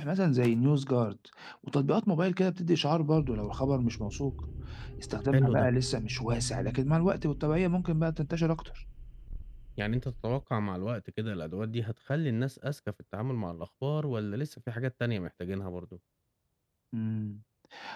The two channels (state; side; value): identical; both; correlation 1.00